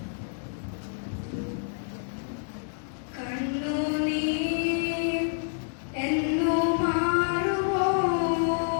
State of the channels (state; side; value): silent; right; 59 dB below the other